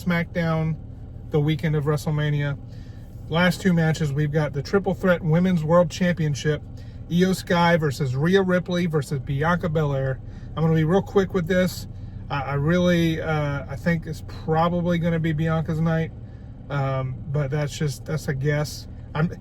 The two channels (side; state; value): both; identical; correlation 1.00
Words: the weekend of WrestleMania. Last 2 matches, we've got the Triple Threat Women's World Championship, Io Sky versus Rhea Ripley versus Bianca Belair. I'm going to be real quick with this. I think it's probably going to be Bianca's night, but that's a guess.